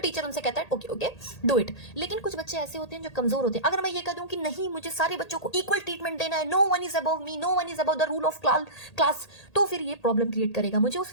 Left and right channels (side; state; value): right; late; 1.8 ms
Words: उनसे कहता है ओके ओके डू इट। लेकिन कुछ बच्चे ऐसे होते हैं जो कमजोर होते हैं। अगर मैं ये कह दूं कि नहीं, मुझे सारे बच्चों को इक्वल ट्रीटमेंट देना है, no one is above me, no one is above the rule of class, तो फिर ये प्रॉब्लम क्रिएट करेगा। मुझे